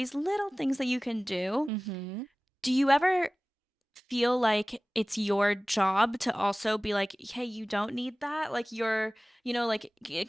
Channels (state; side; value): normal; both; correlation 0.98